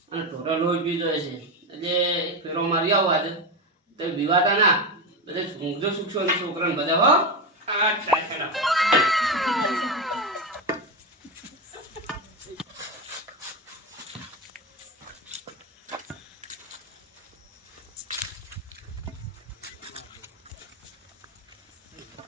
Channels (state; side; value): normal; both; correlation 0.14